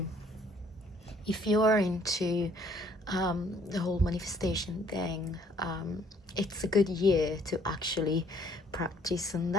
if you're into the whole manifestation thing, it's a good year to actually practice on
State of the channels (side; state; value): both; normal; correlation 0.62